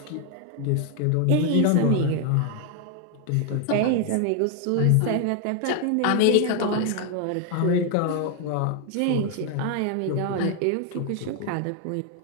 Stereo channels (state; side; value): different; both; correlation 0.01